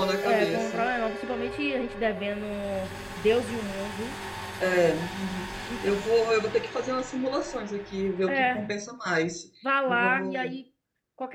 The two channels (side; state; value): both; identical; correlation 1.00